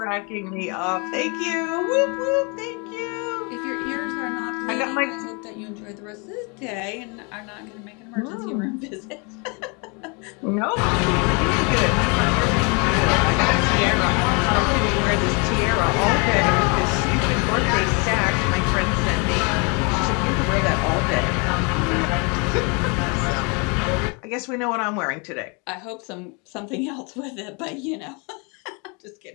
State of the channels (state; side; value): quieter; right; 32.4 dB